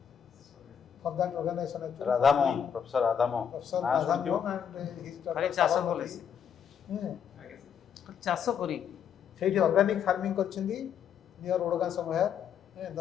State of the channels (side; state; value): right; quieter; 8.1 dB